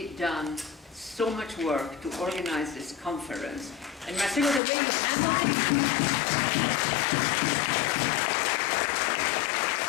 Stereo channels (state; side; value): drops out; right; at 4.6 s